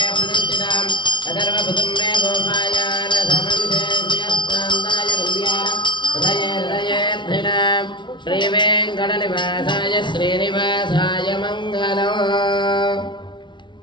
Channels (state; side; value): late; right; 0.23 ms